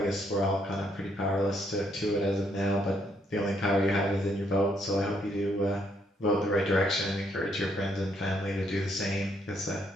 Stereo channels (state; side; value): normal; both; correlation 0.71